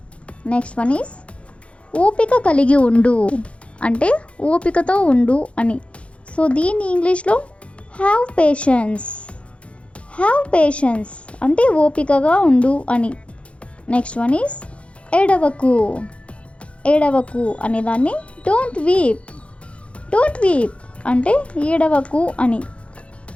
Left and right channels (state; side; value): late; right; 0.061 ms